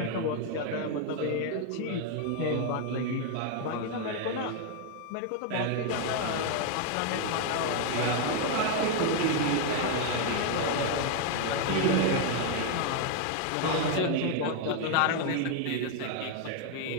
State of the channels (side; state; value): both; different; correlation 0.01